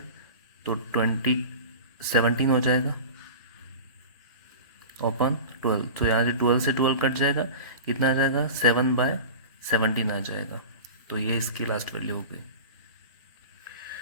तो 17 हो जाएगा ओपन 12। तो यहाँ से 12 कट जाएगा, कितना आ जाएगा 7/17 आ जाएगा। तो ये इसकी लास्ट वैल्यू हो गई।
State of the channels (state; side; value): inverted; both; correlation -0.33